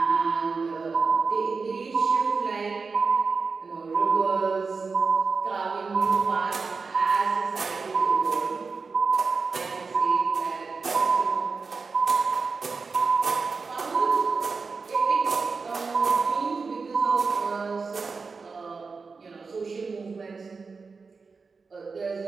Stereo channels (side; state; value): left; quieter; 4.6 dB